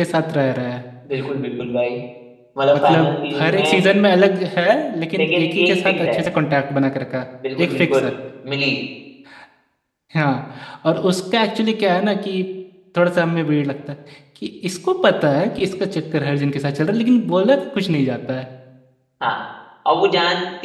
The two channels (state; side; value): identical; both; correlation 1.00